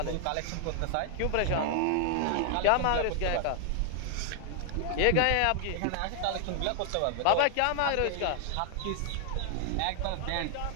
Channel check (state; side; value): different; both; correlation 0.00